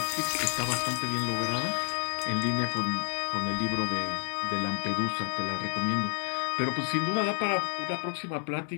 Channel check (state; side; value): silent; right; 58 dB below the other